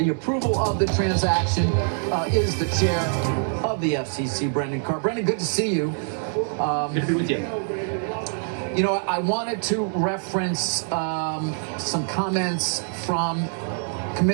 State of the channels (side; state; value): left; silent; digital silence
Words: approval of the transaction is the chair of the FCC, Brendan Carr. Brendan, good to see you. Good to be with you. You know, I wanted to reference some comments from